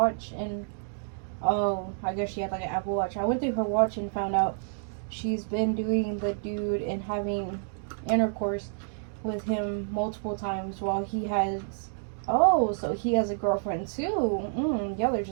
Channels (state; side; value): silent; left; digital silence